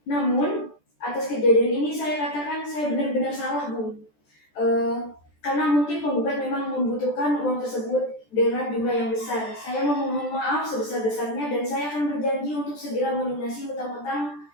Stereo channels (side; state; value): right; late; 14 ms